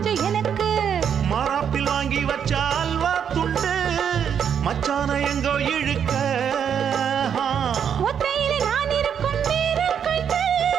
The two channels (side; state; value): left; quieter; 8.1 dB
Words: எனக்கு மாறாப்பில் வாங்கி வச்ச அல்வா துண்டு மச்சான எங்கோ இழுக்க ஒத்தையிலே நான் இருக்கும் நேரம் கண்டு